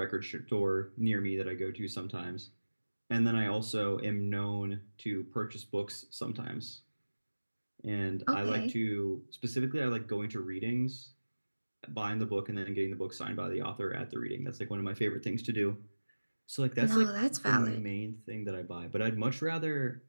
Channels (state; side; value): inverted; both; correlation -1.00